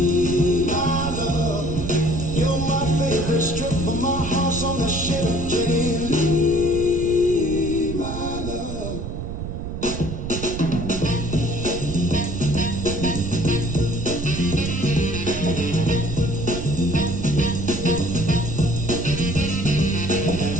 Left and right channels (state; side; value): noise; right; rumble, 6 dB below the sound